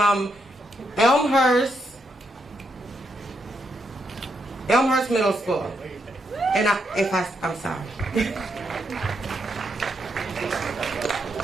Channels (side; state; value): both; normal; correlation 0.80